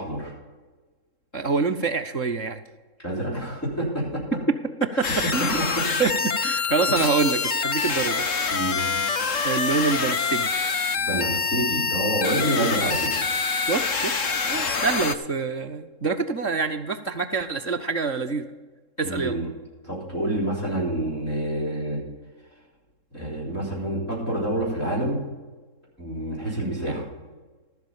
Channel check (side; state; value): right; late; 3.7 ms